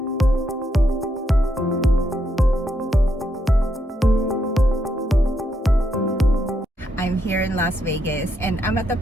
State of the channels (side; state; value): both; normal; correlation 0.78